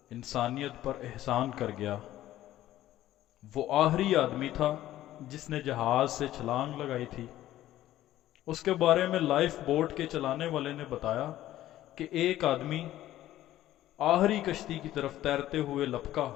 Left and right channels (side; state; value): right; quieter; 13.9 dB